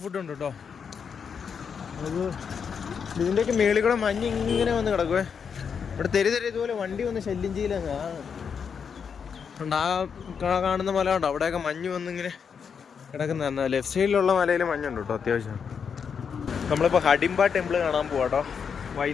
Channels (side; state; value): right; quieter; 6.6 dB